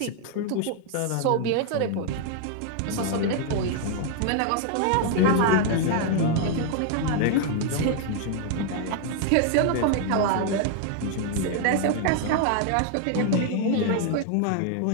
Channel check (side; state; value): both; different; correlation 0.00